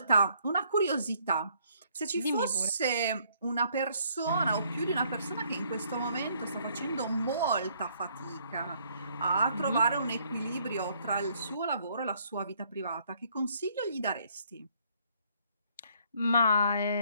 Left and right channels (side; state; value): both; inverted; correlation -0.66